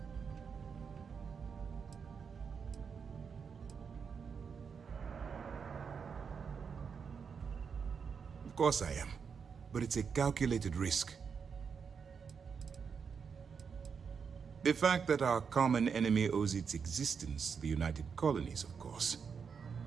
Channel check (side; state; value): left; quieter; 6.2 dB